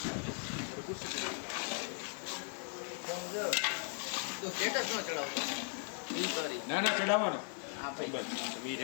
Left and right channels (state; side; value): silent; right; 53 dB below the other